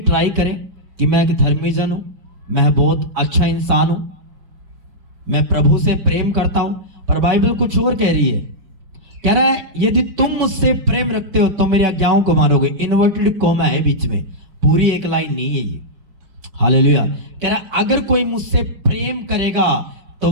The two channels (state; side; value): late; left; 5.3 ms